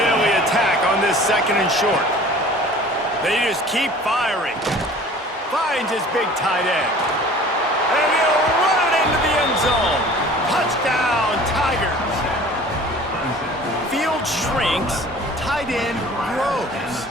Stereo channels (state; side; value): normal; both; correlation 0.46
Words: attack on this 2nd and short. They just keep firing. Finds his big tight end. And he'll run it into the end zone. Touchdown, Tigers. Field shrinks, tight end grows.